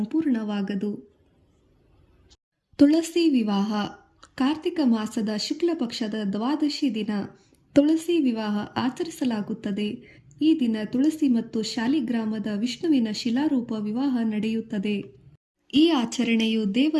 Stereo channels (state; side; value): identical; both; correlation 1.00